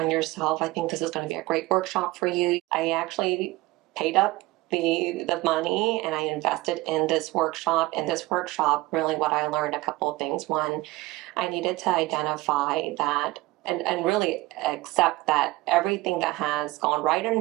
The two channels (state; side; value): quieter; left; 20.0 dB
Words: yourself, I think this is going to be a great workshop for you. I actually paid up the money and I invested in this workshop. And this workshop, really what I learned, a couple of things. One, I needed to identify that and really accept that everything that has gone right and